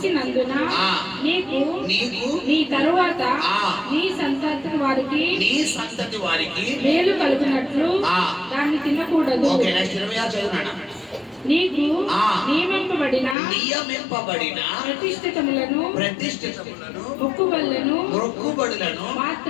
నీకు నీ తరువాత నీ సంతతి వారికి మేలు కలుగునట్లు దాన్ని తినకూడదు. నీకు నియమింపబడిన ప్రతిష్ఠితములను మొక్కుబడులను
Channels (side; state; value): right; drops out; at 13.4 s